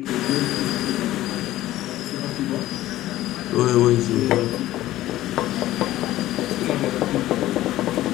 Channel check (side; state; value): right; quieter; 15.1 dB